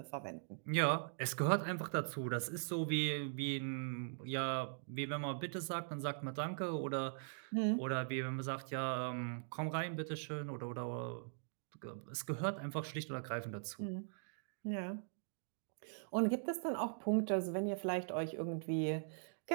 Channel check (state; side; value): silent; left; digital silence